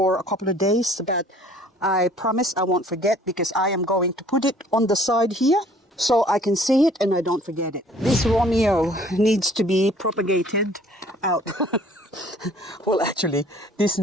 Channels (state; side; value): normal; both; correlation 0.54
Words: a couple of days, but I promise I won't forget, because I am going to put it on the side here. so I can see it and I don't forget it. This Romeo needs to be propagated out. Well, actually, this